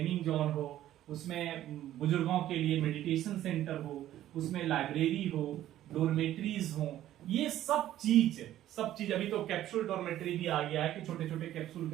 जोन हो, उसमें बुजुर्गों के लिए मेडिटेशन सेंटर हो, उसमें लाइब्रेरी हो, डोरमेट्रीज हो, ये सब चीज। अभी तो कैप्सूल डॉर्मेट्री भी आ गया है कि छोटे छोटे कैप्सूल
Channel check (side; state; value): left; quieter; 13.0 dB